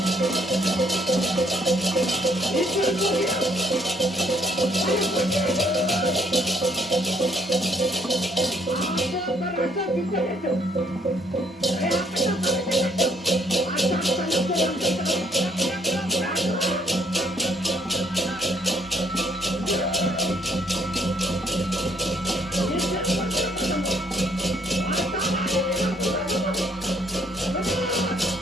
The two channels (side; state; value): both; normal; correlation 0.66